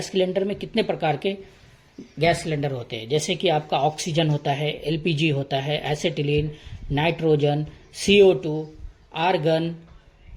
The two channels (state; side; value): identical; both; correlation 1.00